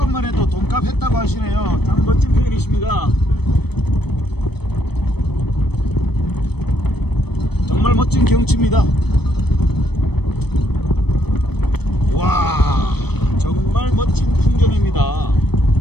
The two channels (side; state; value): right; late; 0.97 ms